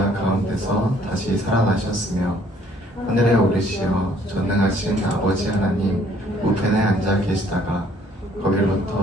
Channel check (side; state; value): both; normal; correlation 0.61